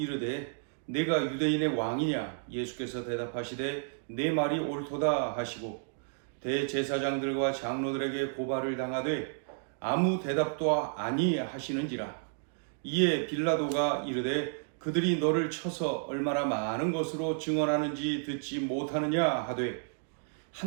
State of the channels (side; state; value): left; silent; digital silence